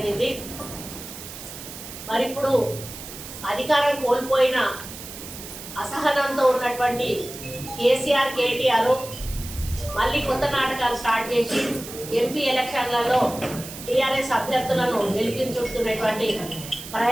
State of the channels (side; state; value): right; noise; hiss, 12 dB below the sound